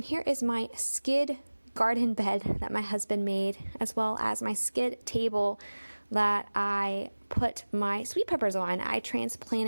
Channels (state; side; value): inverted; both; correlation -1.00